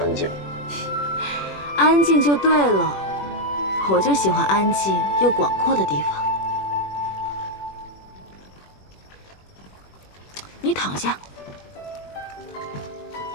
静。安静就对了，我就喜欢安静又广阔的地方。你躺下，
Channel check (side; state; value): right; late; 21 ms